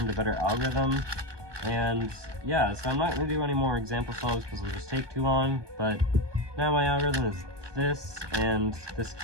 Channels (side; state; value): left; late; 1.2 ms